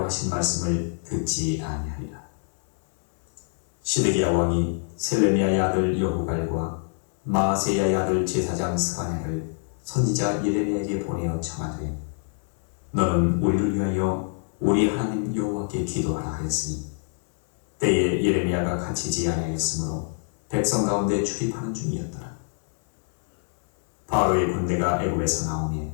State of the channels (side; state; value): right; silent; 61 dB below the other